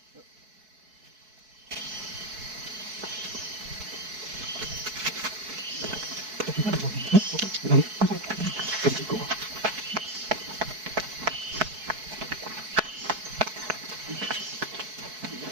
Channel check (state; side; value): late; left; 4.6 ms